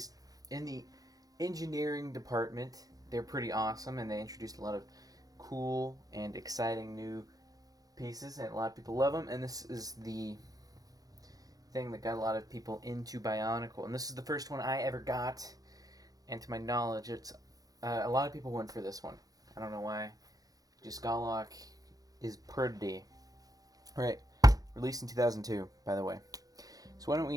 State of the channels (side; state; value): left; late; 0.18 ms